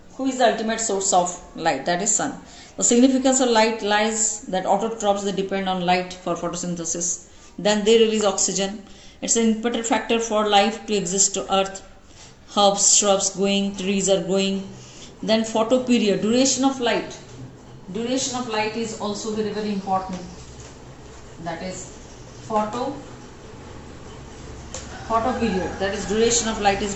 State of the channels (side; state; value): both; identical; correlation 1.00